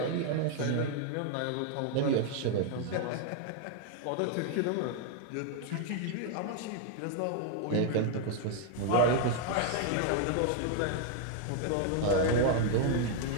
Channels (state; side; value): different; both; correlation 0.00